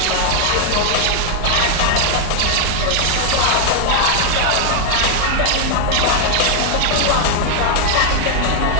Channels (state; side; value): different; both; correlation 0.00